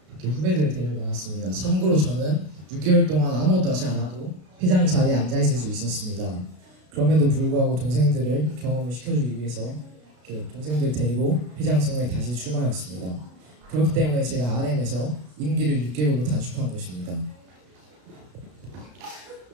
이렇게 후배들을 데리고 나왔습니다. 참고로 저는 6개월 동안 아무것도 하지 않아도 회장 자리에 앉아있을 수 있었습니다. 그럼에도 불구하고 동생들을 경험을 시켜주기 위해서 이렇게 동생들 데리고 회장 선거에 다시 출마하였습니다. 그렇기 때문에 제가 RM에서 임기를 6개월로 단축한 것입니다.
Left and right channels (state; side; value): late; left; 33 ms